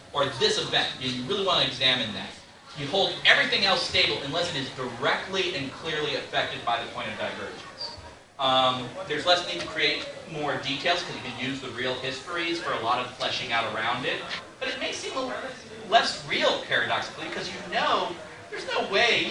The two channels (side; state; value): both; identical; correlation 1.00